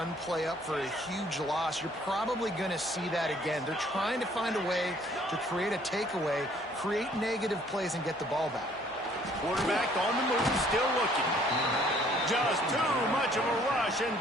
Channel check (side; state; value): both; normal; correlation 0.60